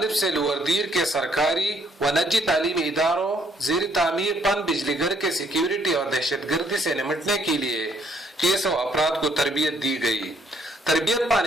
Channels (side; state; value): both; normal; correlation 0.67